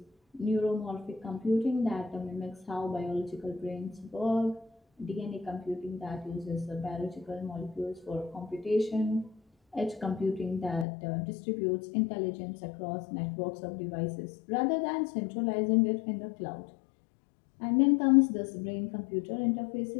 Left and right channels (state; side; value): drops out; right; at 10.9 s